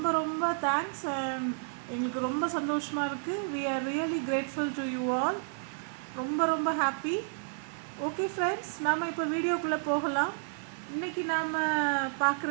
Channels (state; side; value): silent; left; digital silence